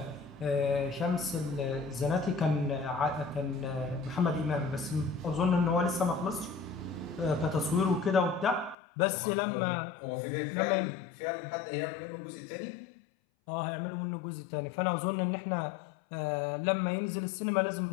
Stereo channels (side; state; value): right; drops out; at 8.8 s